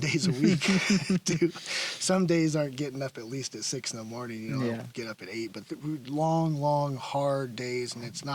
days a week. Some days aren't getting up at least at 6 in the morning, I'll get up at 8, but long, hard days. And it's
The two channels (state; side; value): identical; both; correlation 1.00